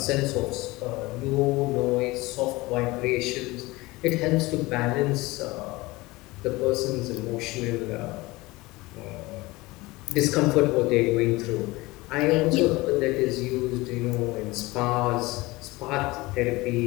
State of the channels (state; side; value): quieter; right; 21.4 dB